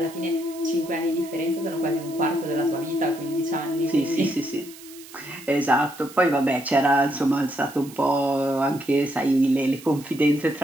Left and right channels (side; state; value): right; noise; hiss, 18 dB below the sound